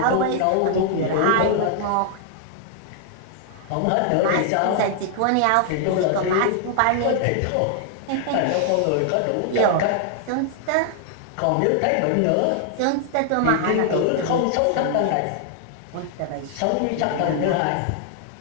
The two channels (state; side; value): different; both; correlation 0.00